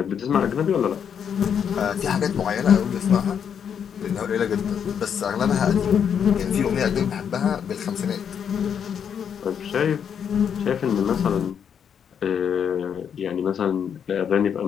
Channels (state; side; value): quieter; right; 7.8 dB